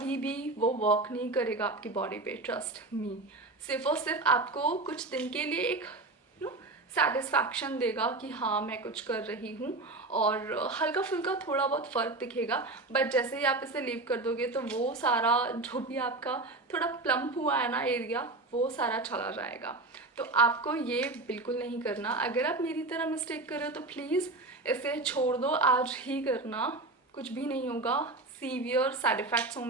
भी वो वर्क नहीं करेगा आपकी बॉडी पे, ट्रस्ट मी। सिर्फ और सिर्फ आपको कुछ दिन के लिए एक सेटिस्फैक्शन देगा कि हाँ मैं कुछ कर रही हूँ, और हल्का फुल्का थोड़ा बहुत फ़र्क दिखेगा। बट जैसे ही आप इसे लीव कर दोगे तो वो सारा जो भी आपका थोड़ा प्लम्प हुआ है ना एरिया, वो सारा चला जाएगा। तो आपको ये बिल्कुल नहीं करना। अगर आप मेरी तरह मिस्टेक कर रहे हो तो प्लीज़ इसे छोड़ दो, आज ही करना, कुछ भी नहीं होगा। सीवियर साइड इफ़ेक्ट्स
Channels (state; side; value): quieter; left; 3.1 dB